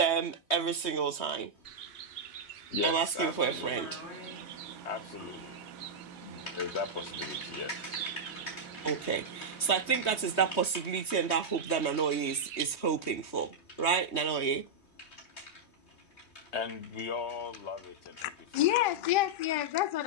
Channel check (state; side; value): late; right; 3.2 ms